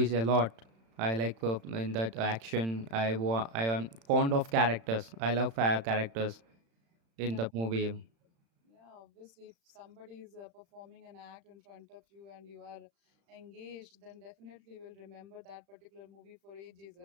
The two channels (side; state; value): left; late; 35 ms